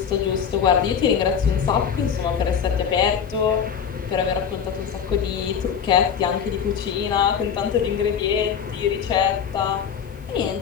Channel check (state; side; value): quieter; right; 7.5 dB